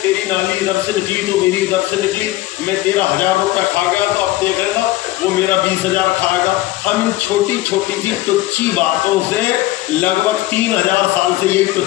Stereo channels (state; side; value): quieter; right; 17.1 dB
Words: तेरी नाली इधर से निकली तो मेरी इधर से निकली, मैं तेरा 1000 रुपया खा गया तो अब देख लेना वो मेरा 20,000 खाएगा। हम इन छोटी छोटी सी तुच्छी बातों से लगभग 3000 साल से यही